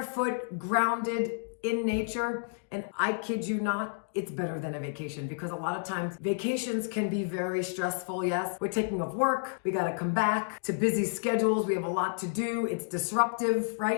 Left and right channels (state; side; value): silent; right; digital silence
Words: grounded in nature. And I kid you not, it's better than a vacation because a lot of times vacations can be very stressful. Yes, we're taking off work. We got to come back to busy schedules. We have a lot to do. It's disruptive,